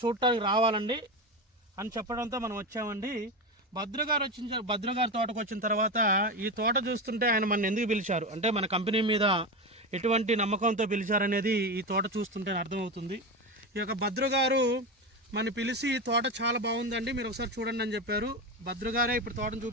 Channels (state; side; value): normal; both; correlation 0.18